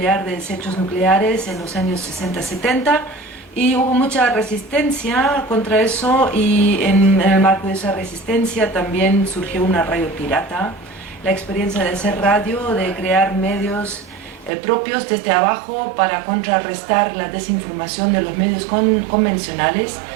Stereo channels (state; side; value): drops out; left; at 14.5 s